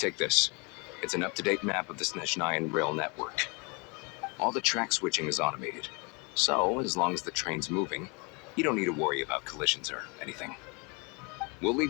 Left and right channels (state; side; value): quieter; right; 31.3 dB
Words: this. It's an up-to-date map of the Snezhnayan rail network. All the track switching is automated. So, as long as the train's moving, you don't need to worry about collisions or anything. We'll